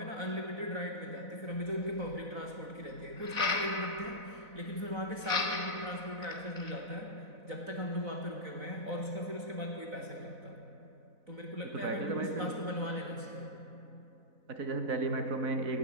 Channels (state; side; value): late; left; 4.0 ms